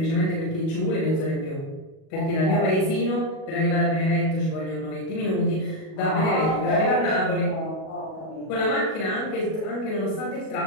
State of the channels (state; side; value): late; right; 37 ms